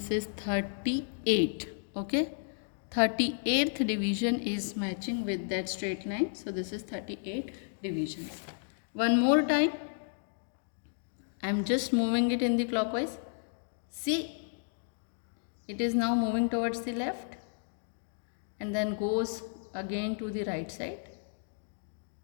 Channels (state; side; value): silent; right; digital silence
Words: is 38. Okay, 38th division is matching with that straight line. So this is 38 divisions. One more time, I am just moving it in the clockwise. See, it is now moving towards the left and then goes again to the right side.